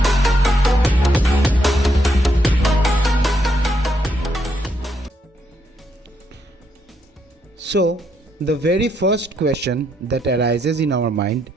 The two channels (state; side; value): normal; both; correlation 0.76